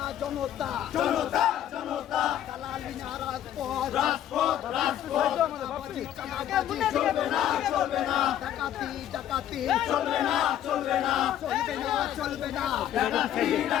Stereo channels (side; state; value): right; quieter; 11.2 dB